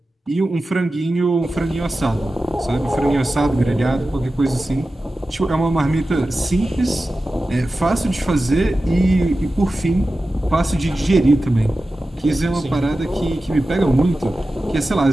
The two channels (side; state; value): both; normal; correlation 0.94